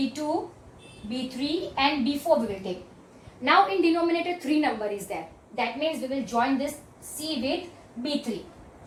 B3 and B4 we will take. Now in denominator 3 number is there. That means we will join this C with B3.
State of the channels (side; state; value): both; identical; correlation 1.00